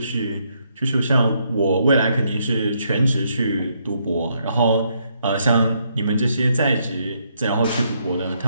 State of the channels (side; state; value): both; inverted; correlation -0.75